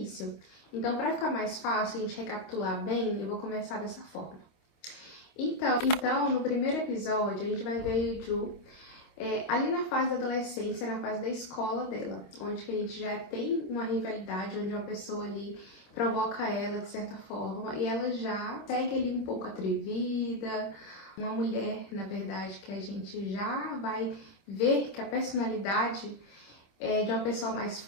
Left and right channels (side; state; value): right; late; 26 ms